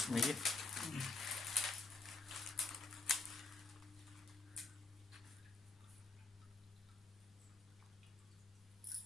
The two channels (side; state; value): right; quieter; 3.6 dB